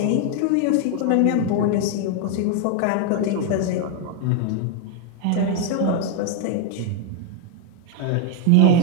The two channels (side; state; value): both; different; correlation 0.00